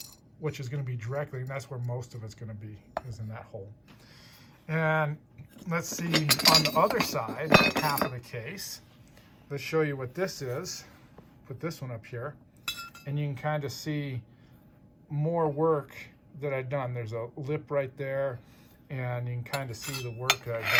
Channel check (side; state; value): both; identical; correlation 1.00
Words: which is going to be directly, and that's where most of it's going to be, is in that hole. And let's see on the other side, half of the case. Let's show you what this is. Put this one up here, and you can kind of see more work that I've done. There's a lip right there, and you can kind of see the work that